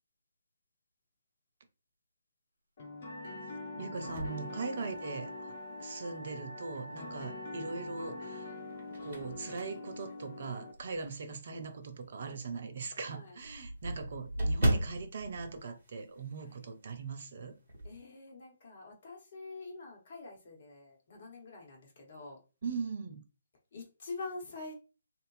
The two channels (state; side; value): inverted; both; correlation -0.81